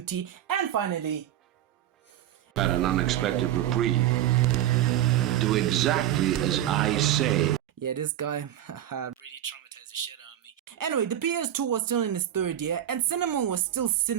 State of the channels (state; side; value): quieter; left; 11.9 dB